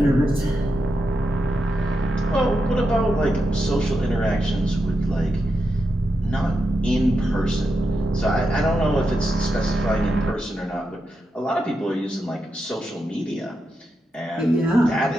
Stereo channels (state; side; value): normal; both; correlation 0.86